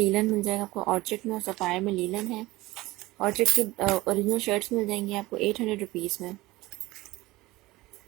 मिल जाएगा आपको ऑर्चिड में और सफायर में लीलन है। ऑर्चिड की ओरिजिनल शर्ट्स मिल जाएंगी आपको 800 रुपीज़ में।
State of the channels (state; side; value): quieter; left; 19.5 dB